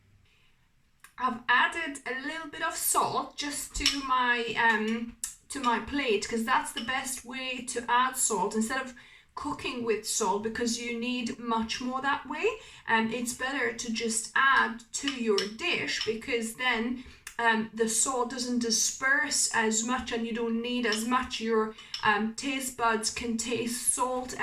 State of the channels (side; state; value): both; identical; correlation 1.00